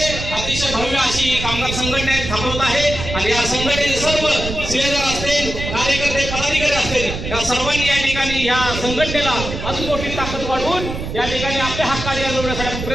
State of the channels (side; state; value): right; noise; rumble, 6 dB below the sound